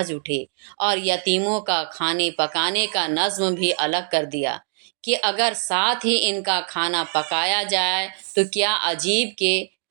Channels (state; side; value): silent; left; 60 dB below the other